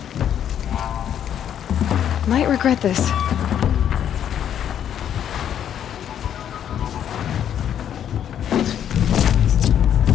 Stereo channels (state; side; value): quieter; right; 9.6 dB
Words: Might regret this.